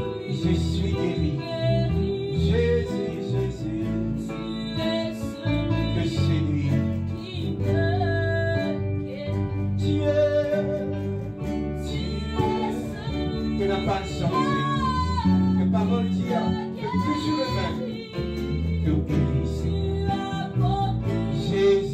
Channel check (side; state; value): both; identical; correlation 1.00